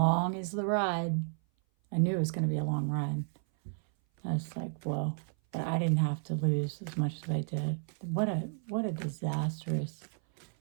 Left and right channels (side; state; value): left; silent; 56 dB below the other